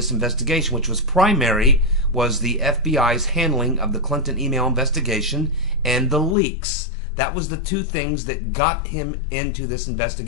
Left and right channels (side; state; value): right; drops out; at 6.4 s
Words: investigation, which was the FBI's handling of the Clinton email investigation and the leaks. That was the two things that got him into this